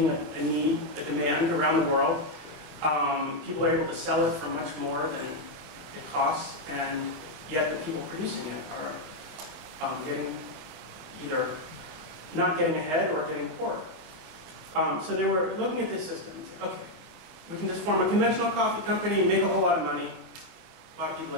a need, a demand around the world. People are able to sell it for much more than it costs, and yet the people producing it are getting either not getting ahead or getting poorer. So they were looking at this system and saying, okay, we can just form a conventional coffee company, make a whole lot of money. A lot of people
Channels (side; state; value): left; late; 25 ms